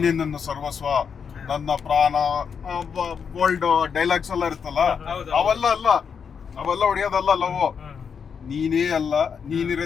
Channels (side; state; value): right; quieter; 6.6 dB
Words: ನನ್ನ ಸರ್ವಸ್ವ, ನನ್ನ ಪ್ರಾಣ, ಬೋಲ್ಡ್ ಡೈಲಾಗ್ಸ್ ಎಲ್ಲ ಇರುತ್ತಲ್ಲ, ಅವೆಲ್ಲ ಅಲ್ಲ. ಅವೆಲ್ಲ ಹೊಡೆಯೋದಲ್ಲ ಲವ್. ನೀನೇ ಅಲ್ಲ,